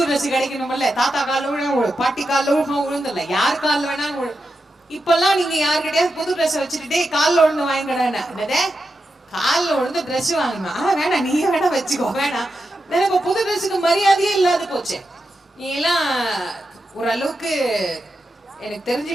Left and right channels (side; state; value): both; normal; correlation 0.88